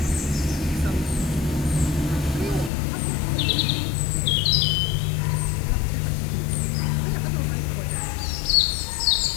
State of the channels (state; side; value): drops out; right; at 2.7 s